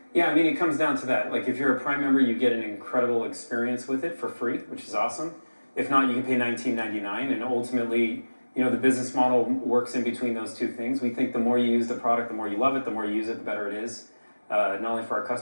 Yeah, I mean, it comes down to that. Like, if you're a Prime member, you get an incredible experience with it for free, which is awesome. If not, you can pay $19.99, and ultimately, you know, the business model works in between those two things. We think the more you use the product, the more you love it, the more you use it, the better it is, not only for our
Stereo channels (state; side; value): inverted; both; correlation -1.00